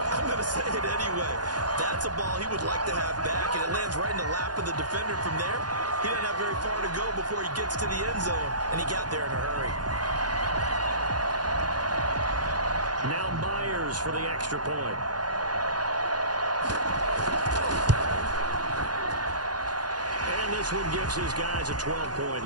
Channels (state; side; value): late; left; 0.69 ms